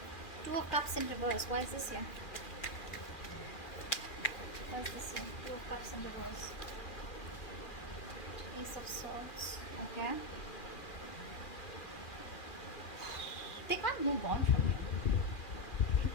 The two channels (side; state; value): right; late; 2.4 ms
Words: Two of Cups in reverse. Why is this here? Why is this here? Two of Cups in reverse. Ace of Swords. Okay. They can't move on from